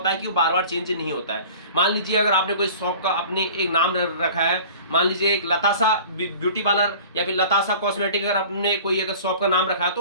है कि वो बार बार चेंज नहीं होता है। मान लीजिए अगर आपने कोई शॉप का अपने एक नाम रखा है, मान लीजिए एक लतासा ब्यूटी पार्लर या फिर लतासा कॉस्मेटिक, अगर आपने कोई अगर शॉप का नाम रखा है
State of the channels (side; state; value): both; inverted; correlation -0.43